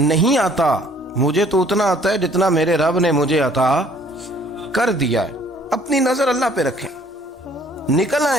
آتا، مجھے تو اتنا آتا ہے جتنا میرے رب نے مجھے عطا کر دیا ہے۔ اپنی نظر اللہ پہ رکھیں، نکل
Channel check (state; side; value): normal; both; correlation 0.58